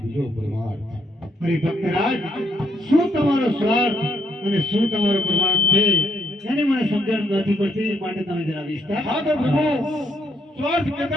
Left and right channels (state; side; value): normal; both; correlation 0.73